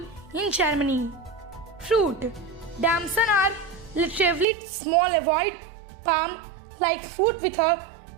in Germany. Fruit. Damson are relatively small, avoid palm-like fruit with a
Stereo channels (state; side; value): drops out; left; at 4.5 s